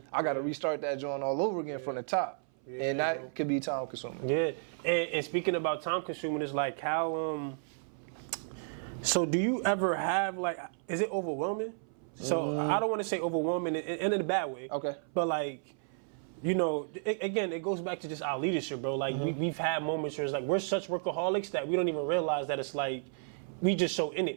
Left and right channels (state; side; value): silent; left; 56 dB below the other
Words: I gotta restart that joint all over again from the top. And that could be time consuming. Yeah, and speaking about time consuming, it's like how, so do you ever have, like, is it overwhelming? So I don't want to say overwhelming in a bad way. Okay. But like, you know, again, it goes back to just our leadership, bro. Like we've had moments where it's like we're such workaholics that we don't even realize that it's like we just so in